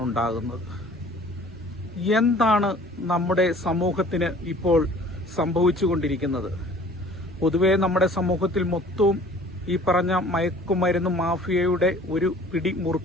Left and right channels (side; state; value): both; normal; correlation 0.50